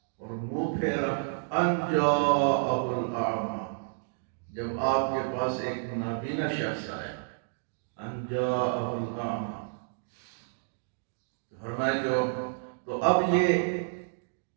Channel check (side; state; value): left; silent; digital silence